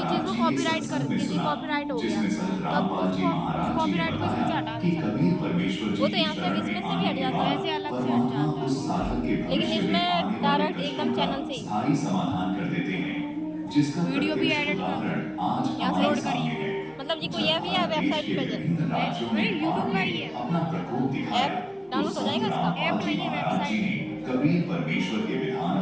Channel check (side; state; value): both; identical; correlation 1.00